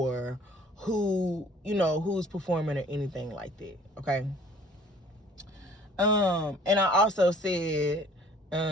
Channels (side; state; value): both; normal; correlation 0.53